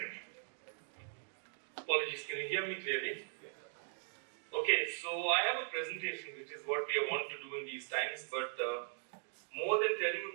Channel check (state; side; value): silent; left; 51 dB below the other